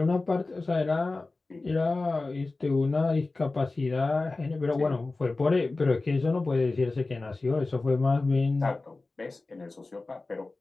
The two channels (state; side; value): quieter; right; 3.4 dB